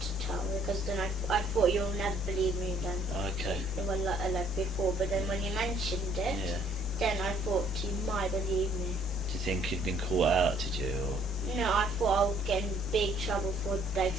to tell, because then I thought you'll never believe me then. Okay. Well, like before, but then when you mentioned it, yeah, then I thought you might believe me. Do you think you'd been caught out? Did you? Or? No, I thought I would get in big trouble for like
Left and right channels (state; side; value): normal; both; correlation 0.62